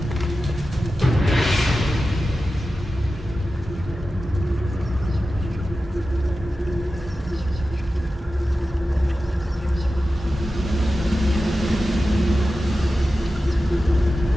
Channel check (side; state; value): both; normal; correlation 0.93